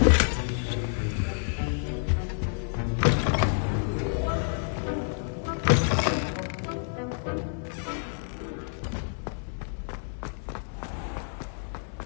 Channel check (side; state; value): right; silent; digital silence